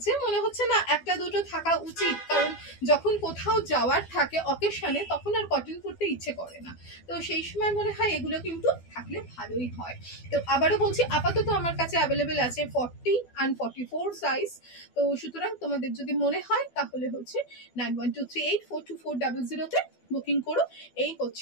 মনে হচ্ছে না একটা দুটো থাকা উচিত, কারণ যখন কোথাও যাওয়ার থাকে অকেশনে তখন আর কটন পরতে ইচ্ছে করে না, তো সেই সময় মনে হয় এগুলো কিন্তু থাকলে ভালোই হয়। তো আবারও বলছি, আপাতত আমার কাছে অ্যাভেলেবেল আছে 40 and 44 সাইজ। তো সুতরাং তোমাদের যদি মনে হয় তাহলে হচ্ছে 9123842400 তে বুকিং করো। এই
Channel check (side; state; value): right; late; 12 ms